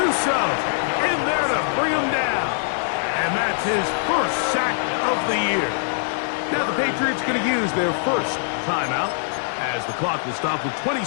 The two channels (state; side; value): silent; right; digital silence